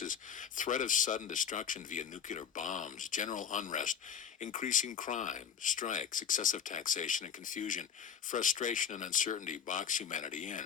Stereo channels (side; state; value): right; quieter; 7.8 dB